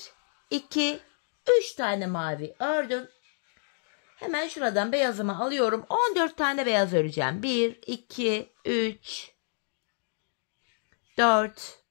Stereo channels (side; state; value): right; silent; digital silence